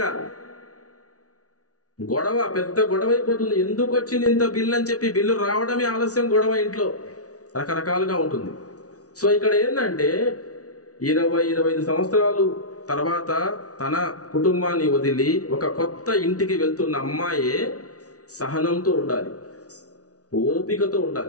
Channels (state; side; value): late; right; 0.67 ms